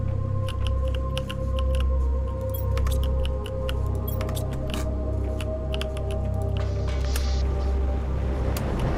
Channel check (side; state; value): both; identical; correlation 1.00